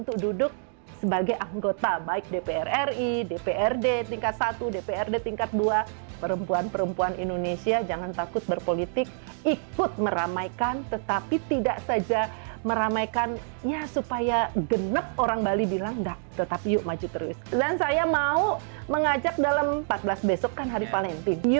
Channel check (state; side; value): silent; left; digital silence